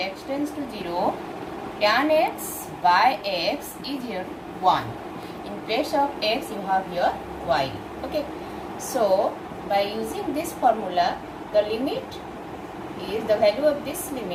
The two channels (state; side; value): identical; both; correlation 1.00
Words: tends to 0, tan x by x is here 1. In place of x you have here y. Okay, so by using this formula, the limit is, the value of this